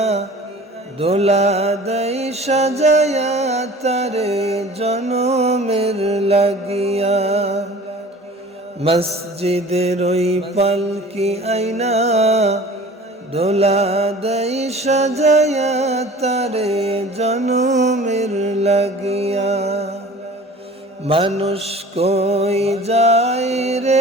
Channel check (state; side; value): normal; both; correlation 0.44